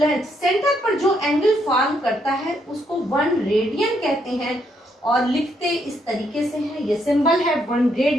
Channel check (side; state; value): both; normal; correlation 0.74